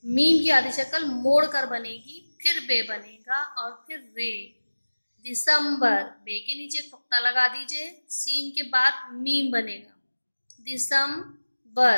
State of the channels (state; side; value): inverted; both; correlation -1.00